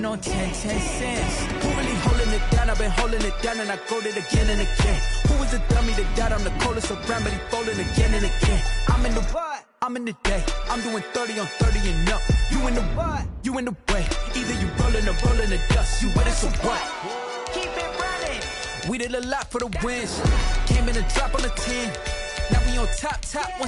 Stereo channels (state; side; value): identical; both; correlation 1.00